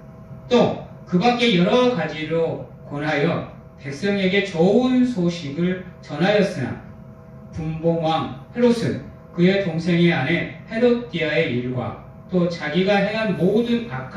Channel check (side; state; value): both; identical; correlation 1.00